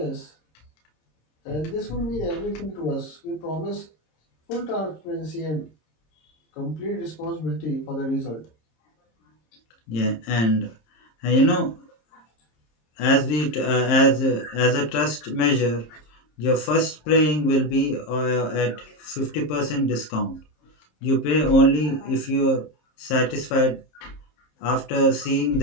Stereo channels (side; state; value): right; late; 26 ms